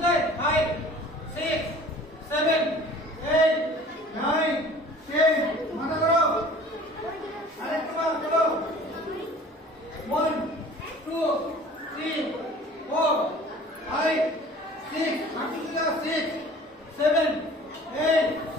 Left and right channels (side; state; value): both; normal; correlation 0.47